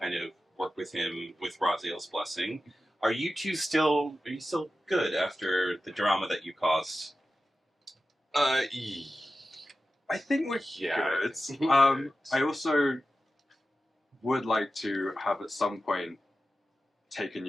of work with him with Raziel's blessing. Are you still good after the drama that you caused? I think we're good. I also would like to have at some point taken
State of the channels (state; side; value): normal; both; correlation 0.93